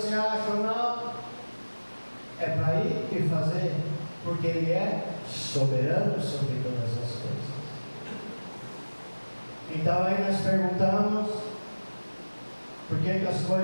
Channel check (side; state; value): both; inverted; correlation -1.00